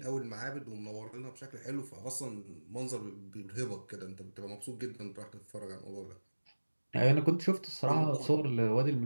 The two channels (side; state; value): both; inverted; correlation -1.00